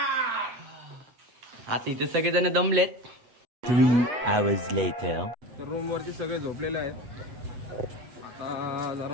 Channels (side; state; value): left; late; 8.2 ms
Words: आता इथे सगळेजण दमलेत. 3 hours later. तर रूम वरती सगळे झोपलेले आहेत. आता